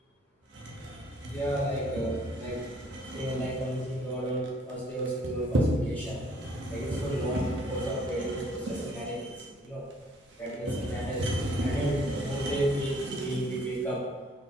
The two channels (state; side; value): normal; both; correlation 0.61